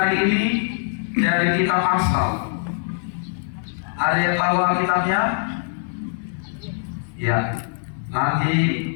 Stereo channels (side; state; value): right; silent; 60 dB below the other